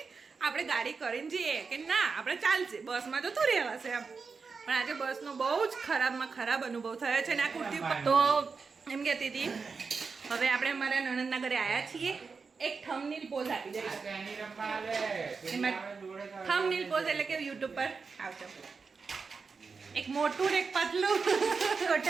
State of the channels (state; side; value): quieter; left; 4.9 dB